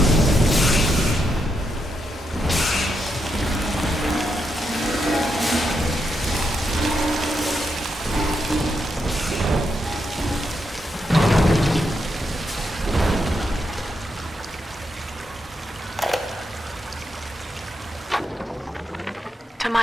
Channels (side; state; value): both; normal; correlation 0.82